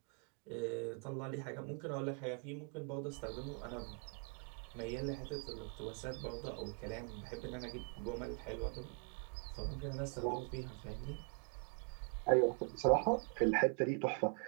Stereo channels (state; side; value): quieter; left; 38.6 dB